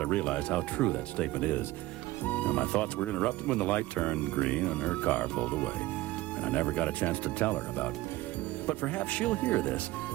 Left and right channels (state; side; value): quieter; left; 17.8 dB